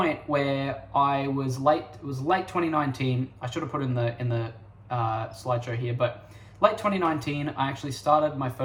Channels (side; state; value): both; identical; correlation 1.00